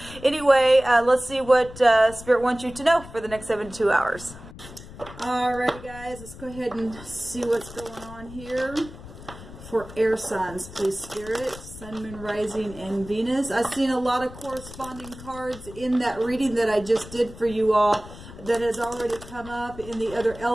anyway, let's see what Spirit wants you to know for the next 72 hours. Alright guys, let's go ahead and see what's going on here for air signs, please Spirit. Sun, Moon, Rising, and Venus. I've seen a lot of corresponding cards in that reading that I just did for you all that has already come up in the other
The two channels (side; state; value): left; noise; rumble, 16 dB below the sound